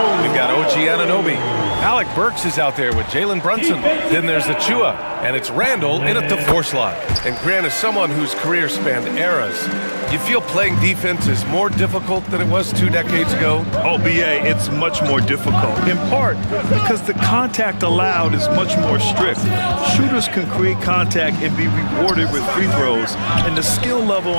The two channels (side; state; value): both; inverted; correlation -1.00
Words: We've got OG Anunoby. Alec Burks is out there with Jalen Brunson. Then there's Achua, and it's Randall in at the four slot. And Grant is someone whose career spanned eras. You feel playing defense is more difficult than it was 2 decades ago? Oh, BA, it's much more difficult, in part because the contact allowed is much more strict. Shooters can create contact and be rewarded with free throws, and the skill level